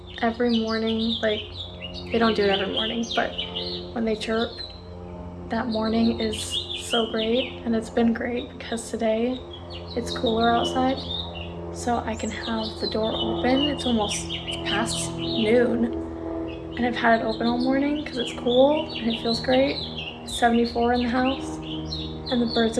every morning, like they don't do it every morning, but when they chirp, that morning is so great, and it's been great because today it's cooler outside, so I can have the door open. It's almost past noon, and I've had it open all morning because it's cool and it feels great. It's 74 in the house, and the birds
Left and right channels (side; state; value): both; identical; correlation 1.00